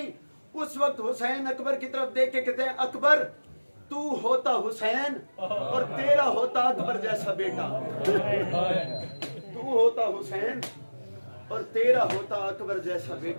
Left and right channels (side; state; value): both; inverted; correlation -1.00